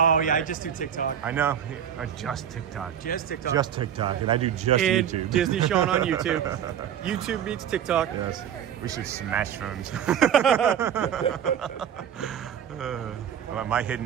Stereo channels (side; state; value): left; quieter; 9.2 dB